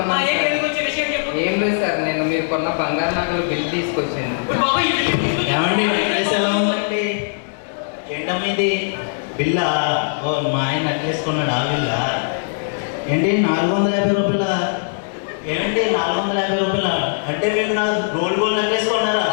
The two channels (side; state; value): right; silent; digital silence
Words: ఏంటి సార్. ఎందుకు వచ్చే విషయం చెప్పు. ఏం లేదు సార్, నేను మీరు కొన్న బంగారు నగలు బిల్ తీసుకొచ్చాను. ఇప్పుడు బాబా ఈ బిల్లు తీసుకొచ్చి ఏమండి నెక్లెస్ ఎలా ఉందండి? ఏంటమ్మీది బిల్లా? ఓ మా ఆయన నెక్లెస్ కొన్నాడు ఆ బిల్లా? ఏంటి 450 రూపాయల? ఏమండి 450 రూపాయల అంటే మీరు నా గోల్డ్ నెక్లెస్ కొన్నారా?